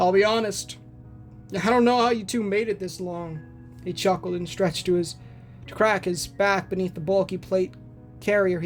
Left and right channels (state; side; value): identical; both; correlation 1.00